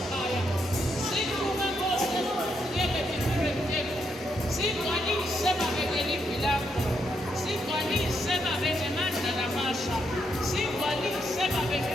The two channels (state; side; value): normal; both; correlation 0.78